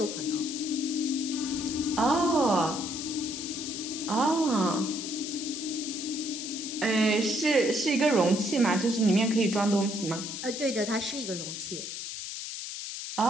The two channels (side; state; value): left; noise; hiss, 7 dB below the sound